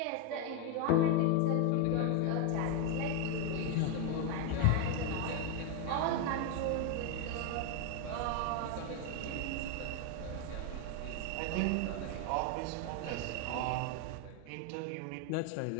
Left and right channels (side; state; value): both; different; correlation 0.02